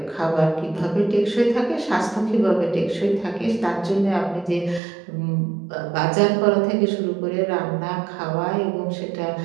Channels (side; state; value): left; drops out; at 4.8 s